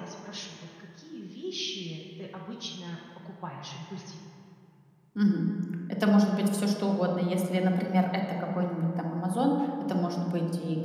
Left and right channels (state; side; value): identical; both; correlation 1.00